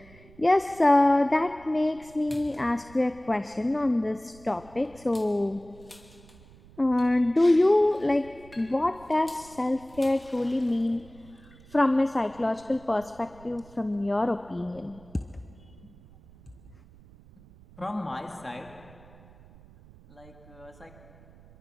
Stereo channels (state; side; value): noise; right; rumble, 24 dB below the sound